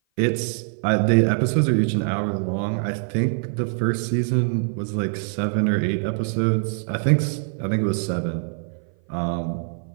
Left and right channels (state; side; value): silent; left; 56 dB below the other